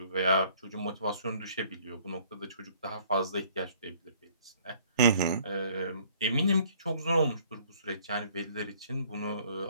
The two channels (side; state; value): both; inverted; correlation -0.58